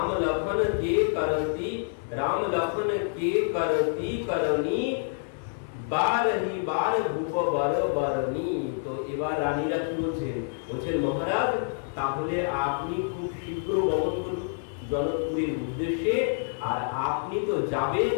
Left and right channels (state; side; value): silent; right; digital silence